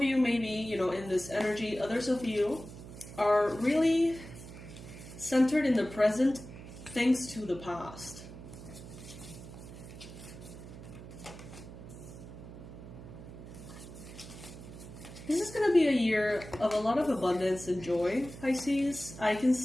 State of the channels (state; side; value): noise; right; hum, 14 dB below the sound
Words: may be, in this energy. Others of you are really centered in the present thanks to the past. This is going to be a year of a lot of abundance and joy, Pisces. I can